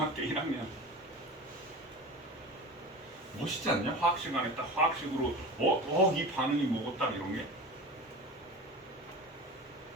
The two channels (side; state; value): both; normal; correlation 0.32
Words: 1학년. 멋있지 않냐? 화학 시간에 딱 화학식으로 이 반응이 뭐고 딱 이런 게.